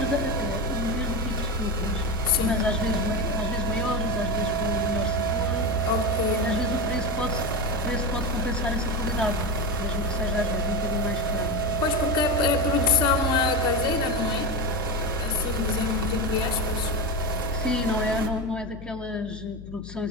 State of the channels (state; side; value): noise; left; hum, 14 dB below the sound